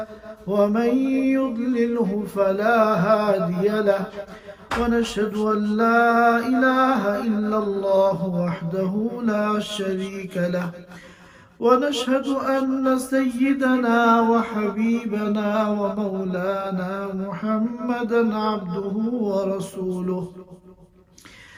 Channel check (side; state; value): both; identical; correlation 1.00